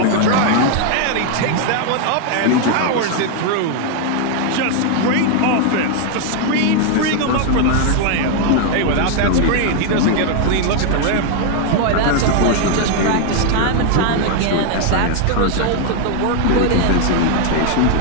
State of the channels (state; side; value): different; both; correlation 0.01